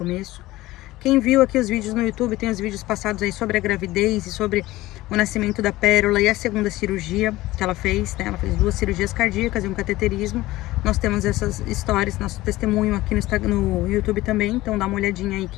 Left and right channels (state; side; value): quieter; right; 17.6 dB